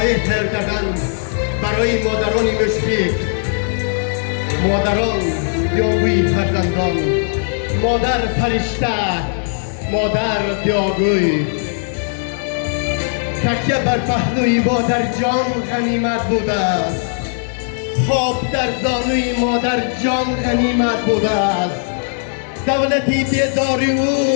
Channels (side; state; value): right; silent; digital silence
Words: تهیه کردن برای مادران مشفق، مادران دیاگوی فرزندان، مادر فرشته، مادر دیاگوی. تکیه بر پهلوی مادر جان غنیمت بوده است. خواب در زانوی مادر جان غنیمت بوده است. دولتی بیداری